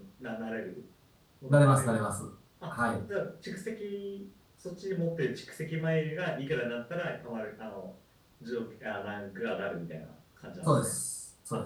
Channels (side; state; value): both; identical; correlation 1.00